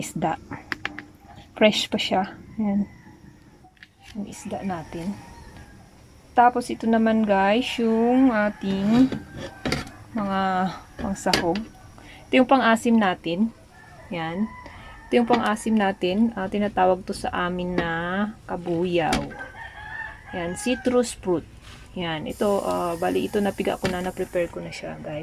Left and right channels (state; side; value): identical; both; correlation 1.00